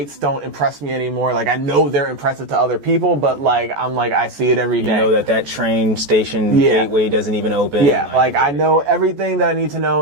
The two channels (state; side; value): late; left; 14 ms